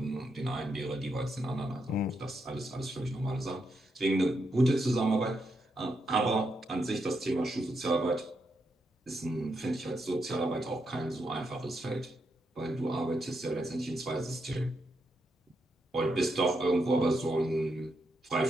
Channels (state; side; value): normal; both; correlation 0.81